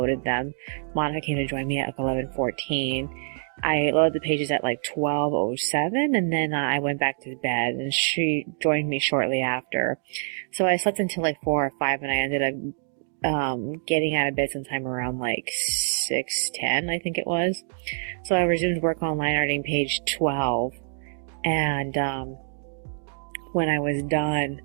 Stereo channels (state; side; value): silent; left; digital silence